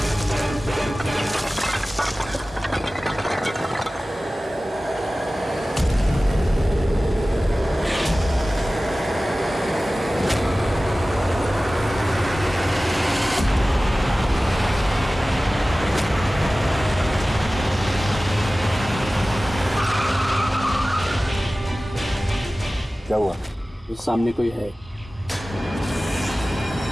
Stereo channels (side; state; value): both; normal; correlation 0.97